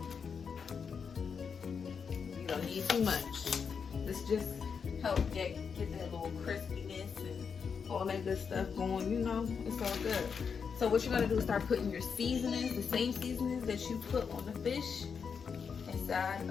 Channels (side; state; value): right; quieter; 6.2 dB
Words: You don't need too much. This just help get that little crispiness and all that good stuff going. You know, it's all good. So what you're gonna do is start putting your seasonings, the same seasonings that you put on the fish, inside